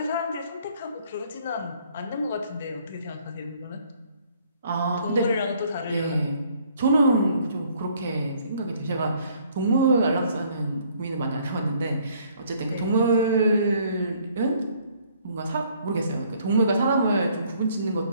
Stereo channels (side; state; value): both; inverted; correlation -0.62